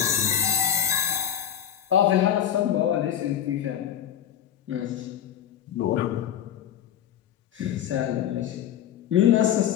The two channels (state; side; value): quieter; right; 10.0 dB